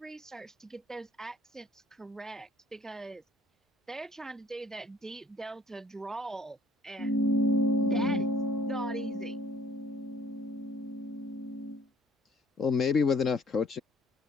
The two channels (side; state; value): both; normal; correlation 0.57